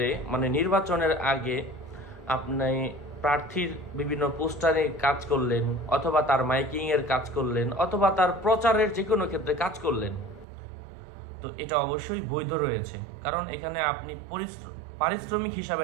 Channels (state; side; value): drops out; left; at 10.5 s